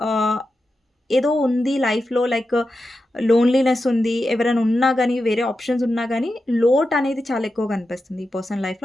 ఏదో ఉంది లైఫ్‌లో లైక్ లోన్‌లీనెస్ ఉంది. ఎవరైనా ఉన్నా గానీ, వేరే ఆప్షన్స్ ఉన్నా గానీ, లోటనేది చాలా ఎక్కువగా కనిపిస్తుంది ఈ పర్సన్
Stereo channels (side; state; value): both; normal; correlation 0.90